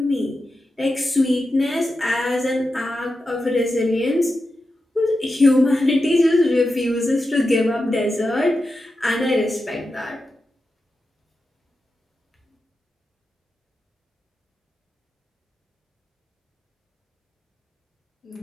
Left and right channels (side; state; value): both; normal; correlation 0.90